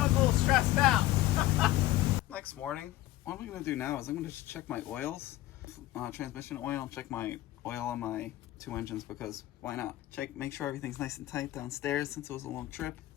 a little stressed out. Next morning, what I'm going to do now is I'm going to check my oils, transmission oil, and check my oil on my 2 engines, because why not? Make sure everything's nice and tight downstairs since it was a long trip.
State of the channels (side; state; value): right; quieter; 15.8 dB